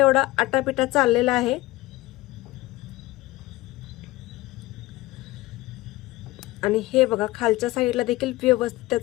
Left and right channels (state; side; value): quieter; right; 18.9 dB